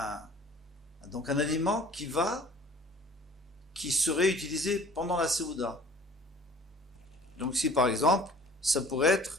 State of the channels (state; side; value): normal; both; correlation 0.50